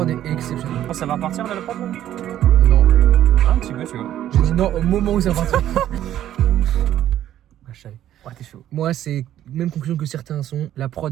est exceptionnelle. Ça va partir là, la prod là? Non. Un petit peu, tu vois. J'ai dit non au moment où ça va partir. Ah, je savais. Ouais, t'es chaud. Moi, c'est même conclusion que certains sont. La prod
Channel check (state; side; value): quieter; left; 11.9 dB